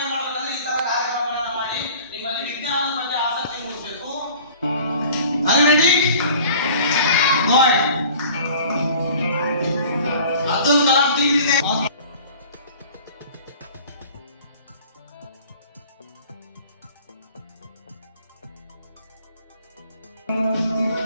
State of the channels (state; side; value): inverted; both; correlation -0.47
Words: ಮಾಡಬೇಕಂದ್ರೆ ಈ ತರ ಕಾರ್ಯಕ್ರಮಗಳನ್ನು ಮಾಡಿ ನಿಮ್ಮಲ್ಲಿ ವಿಜ್ಞಾನದ ಬಗ್ಗೆ ಆಸಕ್ತಿ ಮೂಡಿಸಬೇಕು. Are you ready? Good. Abdul Kalam team ಇದೆ.